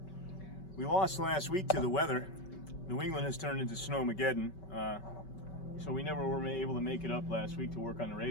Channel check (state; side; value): late; right; 5.2 ms